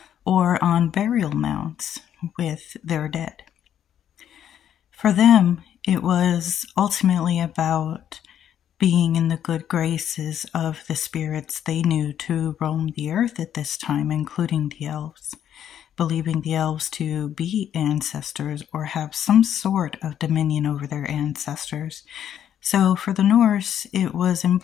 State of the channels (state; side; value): quieter; right; 9.9 dB